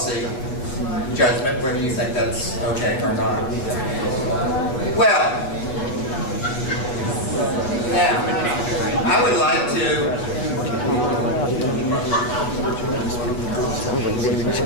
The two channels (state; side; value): late; right; 7.8 ms